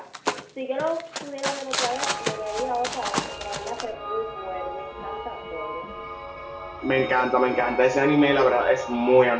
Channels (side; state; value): both; identical; correlation 1.00